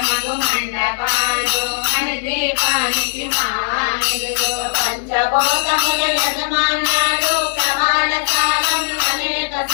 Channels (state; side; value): silent; right; 57 dB below the other